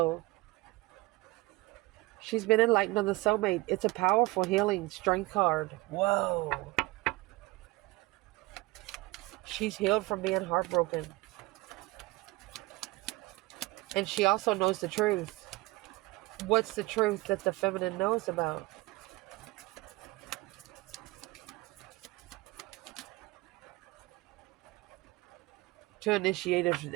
She's been enlightened on the soulmate. It's a powerful healing strength card. Whoa. She's healed from being heartbroken. And she also knows the truth. What's the truth that the feminine knows about? To initiate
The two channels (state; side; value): quieter; left; 21.5 dB